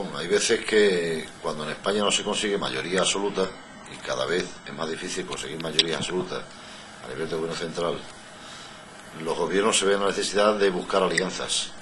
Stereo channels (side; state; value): both; identical; correlation 1.00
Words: Hay veces que cuando en España no se consigue mayoría absoluta, y cada vez es más difícil conseguir mayoría absoluta a nivel de gobierno central, los gobiernos se ven la necesidad de buscar alianzas.